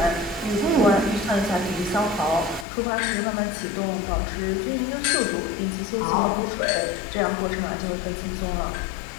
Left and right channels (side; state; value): right; drops out; at 2.7 s